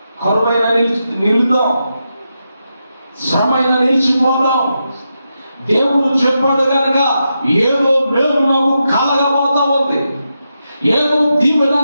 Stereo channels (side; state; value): both; inverted; correlation -0.86